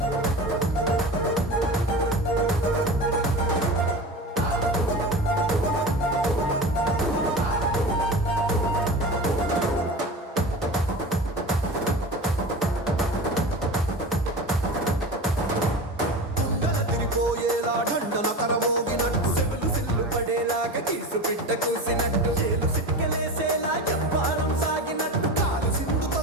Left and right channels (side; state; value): both; normal; correlation 0.30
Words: తిరిపోయేలా ఢండన కరమోగినట్టు సిల్లు సిల్లు పడేలాగా కీసు పిట్ట కూసినట్టు చేలు సిక్కలేసేలా చెప్పారం సాగినట్టు కాలు సింధు